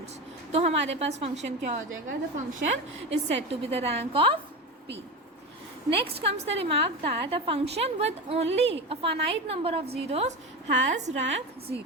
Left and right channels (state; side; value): normal; both; correlation 0.22